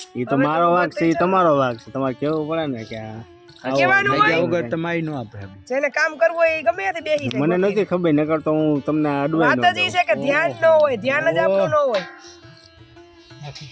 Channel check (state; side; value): identical; both; correlation 1.00